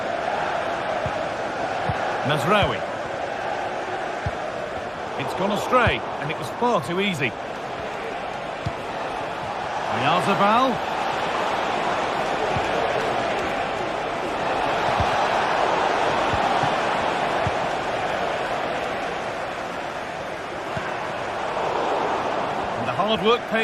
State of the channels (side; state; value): both; identical; correlation 1.00